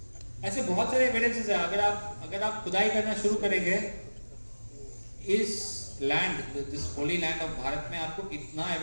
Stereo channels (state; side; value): inverted; both; correlation -1.00